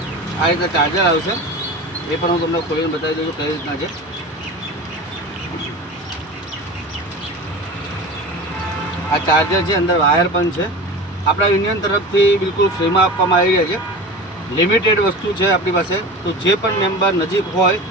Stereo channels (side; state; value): both; normal; correlation 0.32